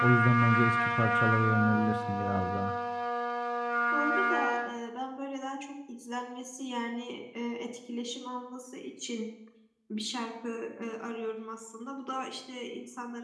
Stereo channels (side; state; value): both; identical; correlation 1.00